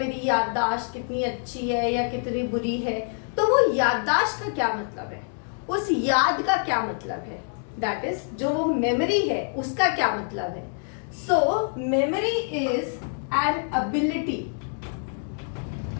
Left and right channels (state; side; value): silent; right; 56 dB below the other